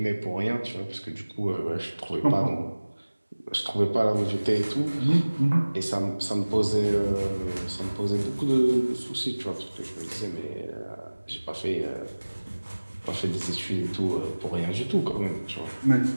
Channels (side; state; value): both; inverted; correlation -1.00